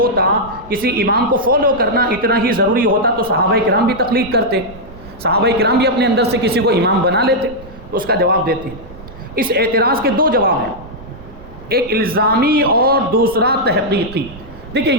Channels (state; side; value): noise; right; rumble, 18 dB below the sound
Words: کسی امام کو فالو کرنا اتنا ہی ضروری ہوتا تو صحابہ کرام بھی تقلید کرتے، صحابہ کرام بھی اپنے اندر سے کسی کو امام بنا لیتے، تو اس کا جواب دیتے ہیں۔ اس اعتراض کے دو جواب ہیں، ایک الزامی اور دوسرا تحقیقی۔ دیکھیں